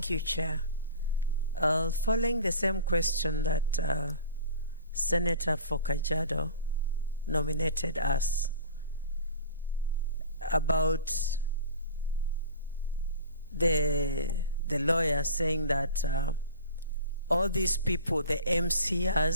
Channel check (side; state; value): both; inverted; correlation -0.39